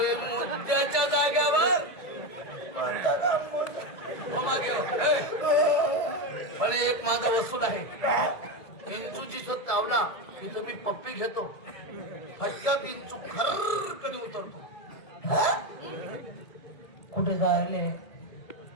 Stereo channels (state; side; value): late; right; 2.2 ms